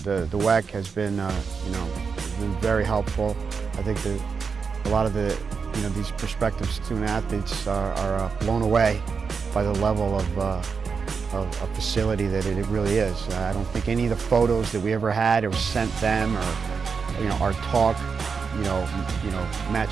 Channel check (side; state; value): left; quieter; 5.5 dB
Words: the WEC has been very helpful. I think that a lot of these prospective student athletes are blown away by the level of facility that it really is. I don't think any of the photos that we ever had or sent them, or our talk,